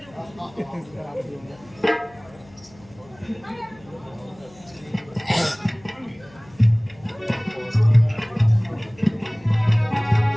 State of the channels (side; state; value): left; noise; hum, 25 dB below the sound